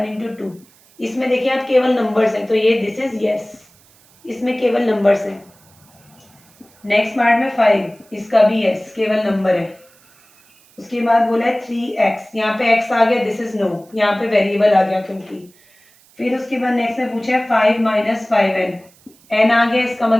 इंटू 2, इसमें देखिए आप केवल नंबर्स हैं, तो ये दिस इज यस, इसमें केवल नंबर्स हैं। नेक्स्ट पार्ट में 5, इसका भी यस, केवल नंबर है। उसके बाद बोला है 3x, यहाँ पे x आ गया, दिस इज नो, यहाँ पे वेरिएबल आ गया क्योंकि। फिर उसके बाद नेक्स्ट में पूछा है 5 माइनस 5n, n आ गया, इसका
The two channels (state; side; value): noise; right; hiss, 30 dB below the sound